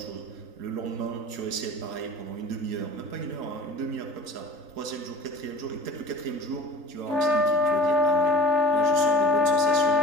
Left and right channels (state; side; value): late; left; 3.8 ms